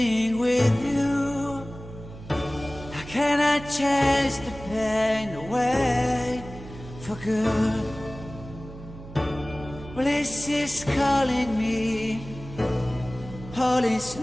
with you? How can I chase the pain away for good? Well, this is calling me, all is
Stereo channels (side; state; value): right; noise; hum, 15 dB below the sound